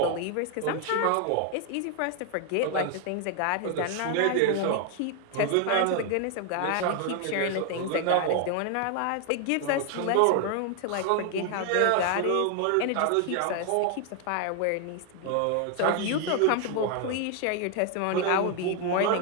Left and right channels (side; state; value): both; different; correlation 0.00